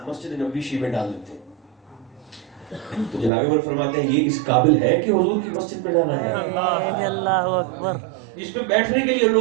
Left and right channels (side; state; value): left; drops out; at 3.3 s